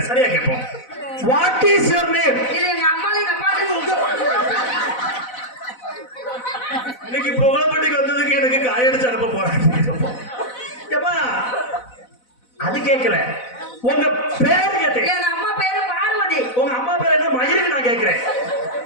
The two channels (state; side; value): late; right; 4.0 ms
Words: சரியா கேட்போம். What is your name? இது எங்க அம்மா எங்க அப்பா. இன்னைக்கு புகழப்பட்டிக்கு வந்ததுக்கு எனக்கு காயடிச்சு அனுப்ப போறேன். அது கேட்கல. உங்க பேரு கேட்டேன். எங்க அம்மா பேரு பார்வதி. உங்க அம்மா பேரு என்ன மயிருக்கு நான் கேட்கிறேன்.